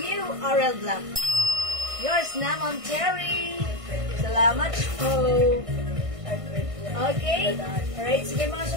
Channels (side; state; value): left; late; 1.6 ms